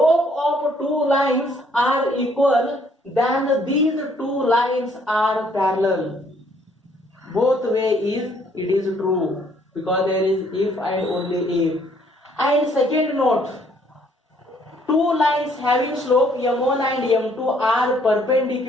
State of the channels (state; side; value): normal; both; correlation 0.64